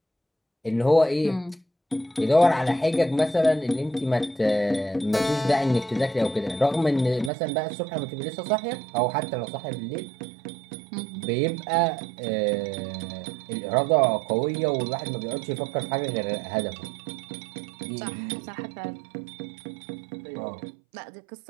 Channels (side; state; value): left; drops out; at 7.3 s